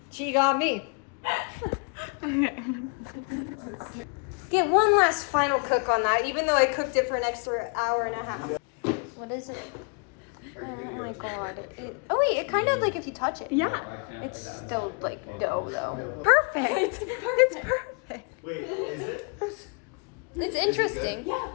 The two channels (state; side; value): quieter; right; 35.3 dB